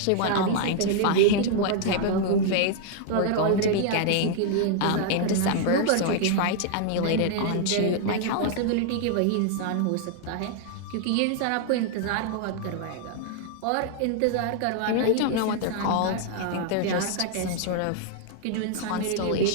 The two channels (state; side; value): different; both; correlation 0.00